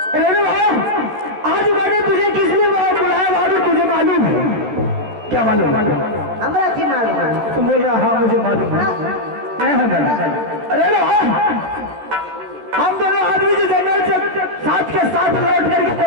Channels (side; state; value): left; late; 13 ms